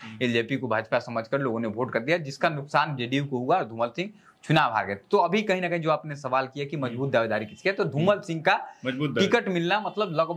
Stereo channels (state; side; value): identical; both; correlation 1.00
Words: एलजेपी को भाजपा समझकर लोगों ने वोट कर दिया, जिसका नुकसान जेडीयू को हुआ और धूमल सिंह चुनाव हार गए। तो अभी कहीं ना कहीं जो आपने सवाल किया कि मजबूत दावेदारी किसकी है, तो धूमल सिंह का टिकट मिलना मतलब